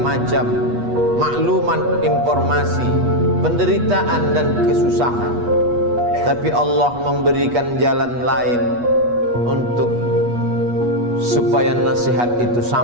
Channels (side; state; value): left; late; 8.3 ms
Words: maklumat, informasi, penderitaan dan kesusahan. Tapi Allah memberikan jalan lain untuk supaya nasihat itu